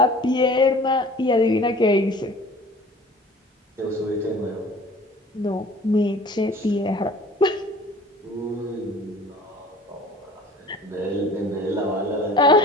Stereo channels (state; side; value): normal; both; correlation 0.46